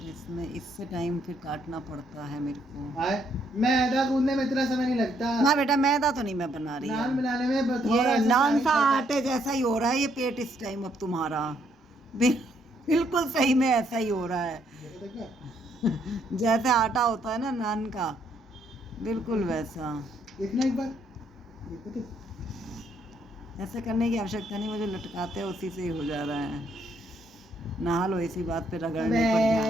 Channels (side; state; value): both; normal; correlation 0.71